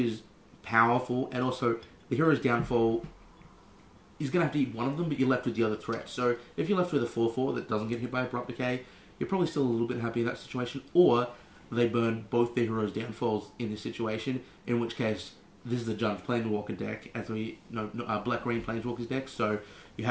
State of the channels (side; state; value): both; identical; correlation 1.00